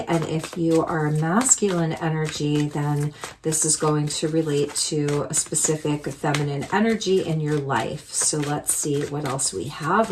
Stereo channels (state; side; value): identical; both; correlation 1.00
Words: and if you are a masculine energy, then this is going to relate to a specific feminine energy in your life. So let's see what else we have